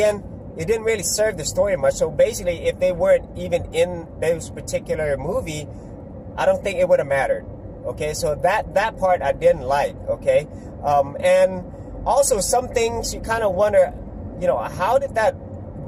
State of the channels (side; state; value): both; identical; correlation 1.00